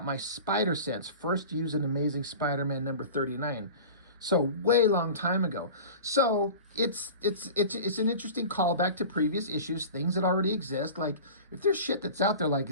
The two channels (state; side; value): inverted; both; correlation -0.37